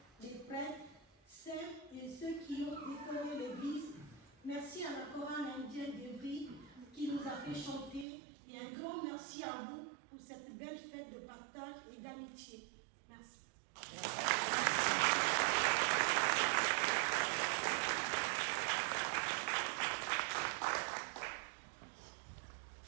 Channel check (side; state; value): left; drops out; at 8.1 s